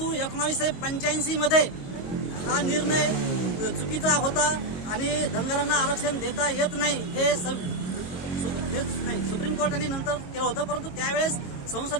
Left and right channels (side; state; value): right; late; 22 ms